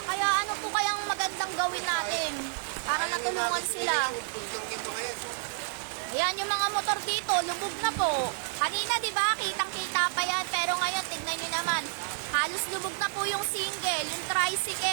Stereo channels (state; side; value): silent; left; 58 dB below the other